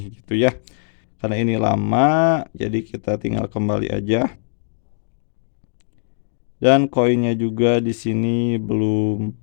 gitu ya. Karena ini lama, jadi kita tinggal kembali aja. Dan koinnya juga di sini belum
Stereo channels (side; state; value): right; silent; digital silence